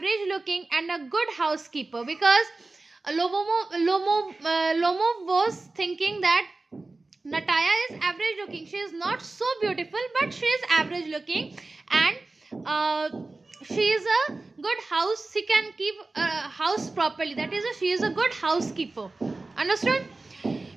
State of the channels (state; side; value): quieter; left; 3.3 dB